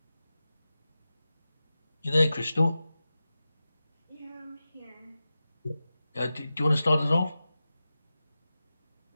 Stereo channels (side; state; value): both; inverted; correlation -0.94